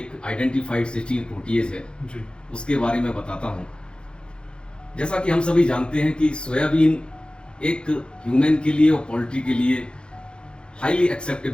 आइडेंटिफाइड सिस्टीन प्रोटीएज है जी, उसके बारे में बताता हूँ। जैसा कि हम सभी जानते हैं कि सोयाबीन एक ह्यूमन के लिए और पोल्ट्री के लिए हाईली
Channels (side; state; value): right; late; 0.052 ms